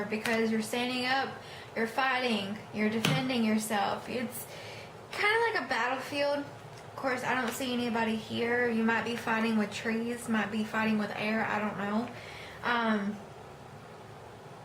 because you're standing up, you're fighting, you're defending yourself. It's kind of like a battlefield. Of course, I don't see anybody here. You might be fighting with trees, might be fighting with air, I don't know.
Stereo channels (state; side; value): identical; both; correlation 1.00